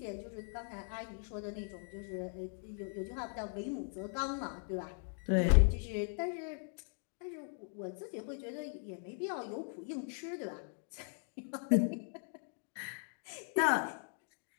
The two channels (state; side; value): silent; right; 52 dB below the other